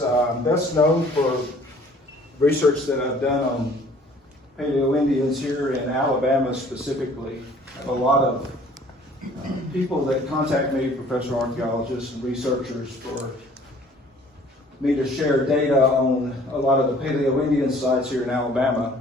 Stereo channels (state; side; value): normal; both; correlation 0.54